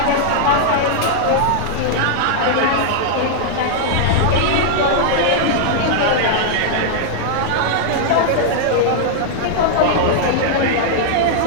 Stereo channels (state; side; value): different; both; correlation -0.01